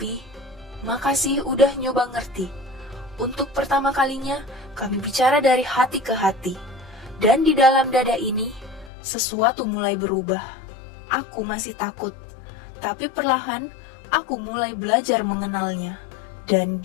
makasih udah nyoba ngerti. Untuk pertama kalinya, kami bicara dari hati ke hati. Dan di dalam dada ini, sesuatu mulai berubah. Aku masih takut. Tapi perlahan, aku mulai belajar mengenalnya. Dan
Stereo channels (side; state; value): right; drops out; at 8.9 s